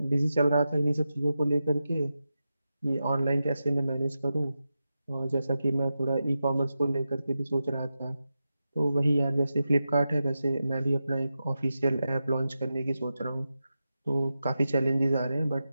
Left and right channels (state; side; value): inverted; both; correlation -0.91